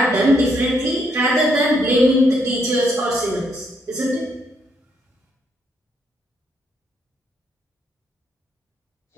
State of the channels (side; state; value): both; normal; correlation 0.74